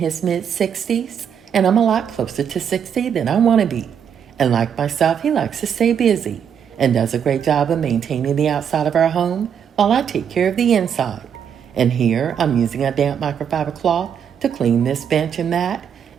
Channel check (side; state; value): left; quieter; 8.0 dB